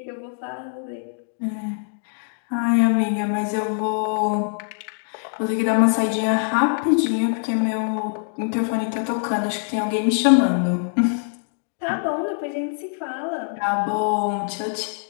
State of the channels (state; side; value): silent; right; 63 dB below the other